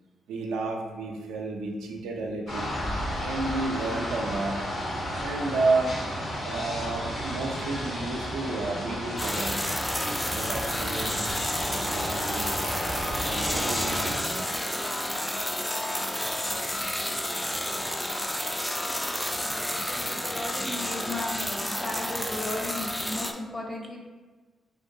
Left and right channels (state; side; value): normal; both; correlation 0.86